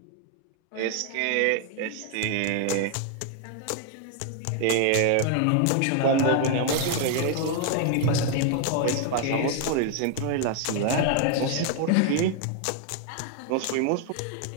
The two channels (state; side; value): different; both; correlation 0.00